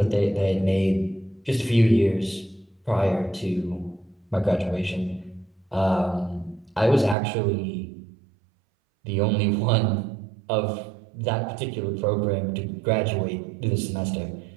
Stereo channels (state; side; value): drops out; left; at 7.2 s